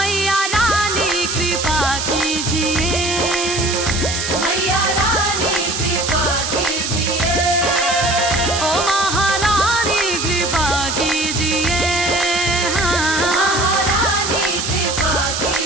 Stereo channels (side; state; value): right; noise; hiss, 3 dB below the sound